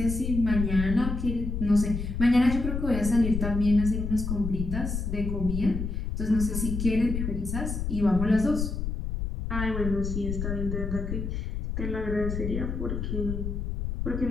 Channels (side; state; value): left; noise; rumble, 3 dB below the sound